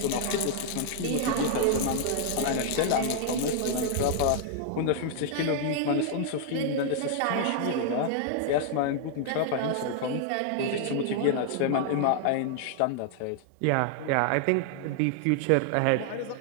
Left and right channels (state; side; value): different; both; correlation 0.00